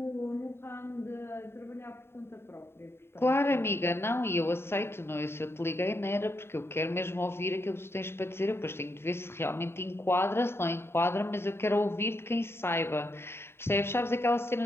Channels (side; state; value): right; late; 0.12 ms